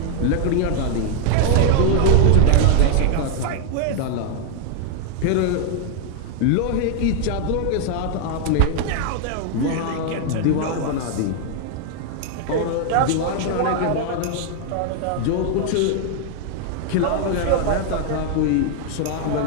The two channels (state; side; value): different; both; correlation 0.00